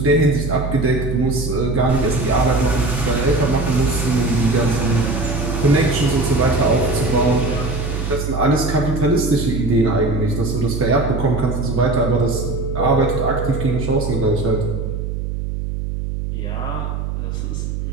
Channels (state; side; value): noise; right; hum, 4 dB below the sound